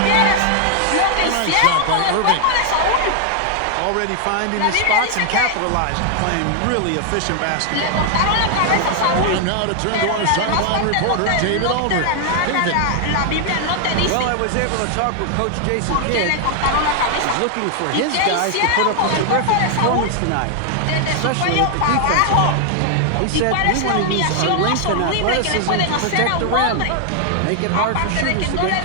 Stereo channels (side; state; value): both; different; correlation 0.00